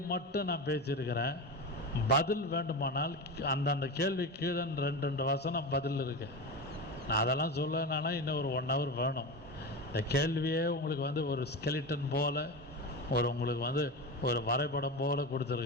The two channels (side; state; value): both; normal; correlation 0.23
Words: மட்டும் நான் பேசியிருக்கிறேன். பதில் வேண்டுமானால் அந்தந்த கேள்வி கீழே 2 வசனம் பதில் இருக்கு. நான் அதெல்லாம் சொல்லனா இன்னும் ஒரு 1 hour வேணும். இந்த கேள்வியே உங்களுக்கு ஒரு ஸ்கெலிட்டன் போல் உங்களுக்கு ஒரு வரைபடம் போல்